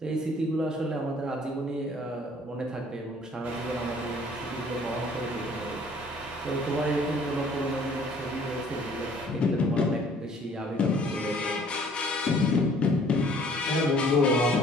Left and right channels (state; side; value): normal; both; correlation 0.56